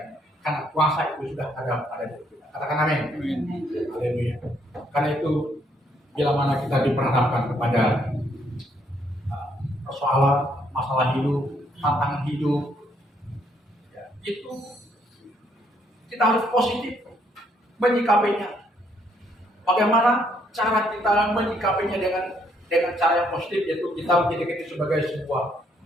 Karena kuasa itu sudah ada pada diri kita. Katakan amin. Haleluya. Karena itu bila mana kita diperhadapkan kepada persoalan, masalah hidup, tantangan hidup, ya, itu kita harus positif menyikapinya. Bagaimana cara kita menyikapinya dengan cara yang positif, yaitu kita menjadikan itu sebagai sebuah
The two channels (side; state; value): both; normal; correlation 0.70